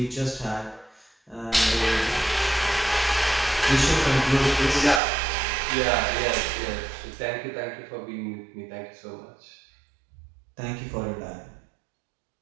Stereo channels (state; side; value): drops out; left; at 5.0 s